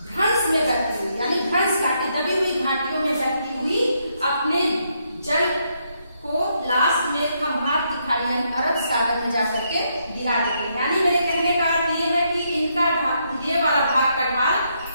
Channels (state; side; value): inverted; both; correlation -0.77